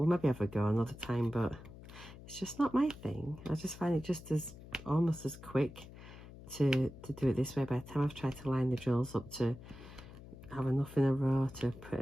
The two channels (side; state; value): left; noise; hum, 16 dB below the sound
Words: maybe have a go another time, but it's just not my thing. I just find it just as almost as quick to do it this way. By the time I've tried to line the drills up to have enough in a row to put